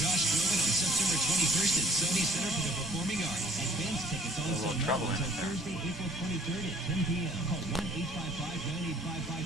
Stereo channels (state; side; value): normal; both; correlation 0.57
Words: Groban on September 21st at Sony Center for the Performing Arts. Advanced tickets also now until Thursday, April 23rd at 10 p.m. Call